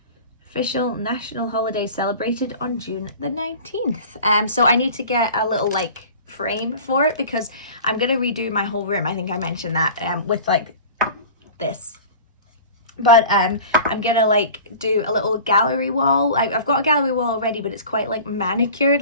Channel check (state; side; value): inverted; both; correlation -0.40